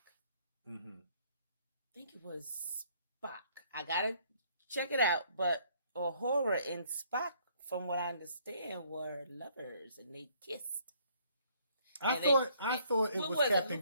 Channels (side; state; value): both; inverted; correlation -0.64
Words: I think it was Spock. I gotta check it out, but horror and Spock, from what I understand, were lovers and they kissed. I thought it was Captain